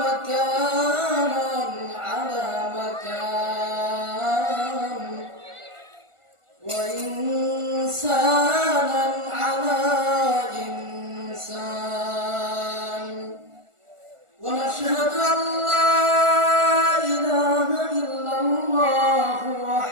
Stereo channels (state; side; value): late; left; 1.4 ms